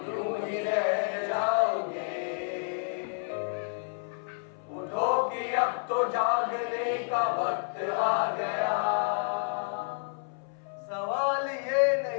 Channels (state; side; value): silent; right; 58 dB below the other